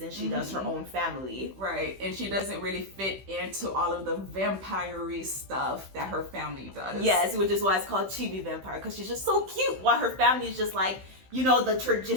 she does her own family. Right, and she doesn't really fit into all of the vampire-y stuff that her family does. Yes, which is why it's called Chibi Vampire, because she's just so cute, while her family is just like, you know, the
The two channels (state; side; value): late; left; 15 ms